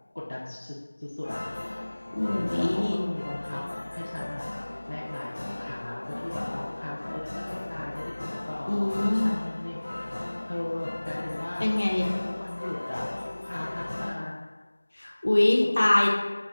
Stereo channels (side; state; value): both; inverted; correlation -1.00